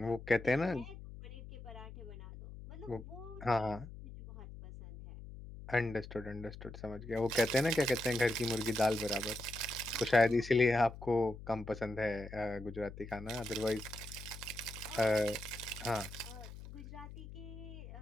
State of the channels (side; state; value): left; noise; hum, 13 dB below the sound